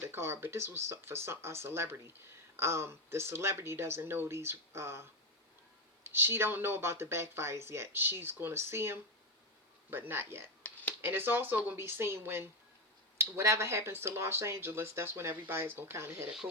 card, but this was for a celebrity. The celebrity doesn't know these. She don't know about the backfires yet. She's going to see them, but not yet. And it's also going to be seen when whatever happens to Los Angeles, that's when everybody's going to kind of hit a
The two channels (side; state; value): both; normal; correlation 0.09